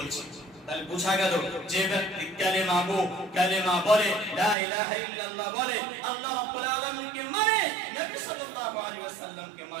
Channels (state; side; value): drops out; left; at 4.5 s